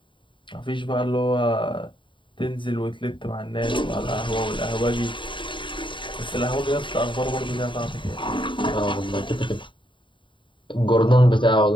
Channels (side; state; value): right; late; 0.24 ms